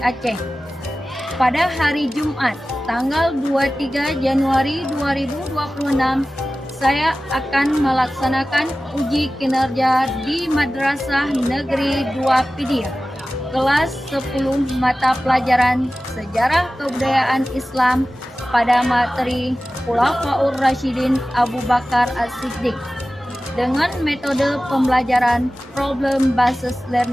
Aceh. Pada hari Jumat, tanggal 23 Januari 2026, saya akan melaksanakan uji kinerja di Madrasah Negeri 2 Pidih, kelas 10 mata pelajaran Sejarah Kebudayaan Islam pada materi Khulafaur Rasyidin Abu Bakar As-Siddiq dengan metode pembelajaran problem based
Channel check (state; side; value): normal; both; correlation 0.96